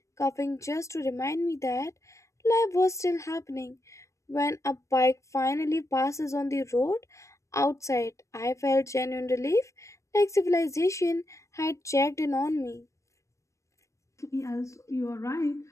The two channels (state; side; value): late; right; 0.15 ms